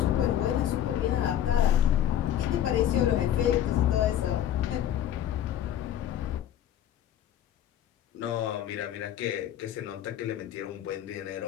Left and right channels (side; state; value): right; quieter; 10.9 dB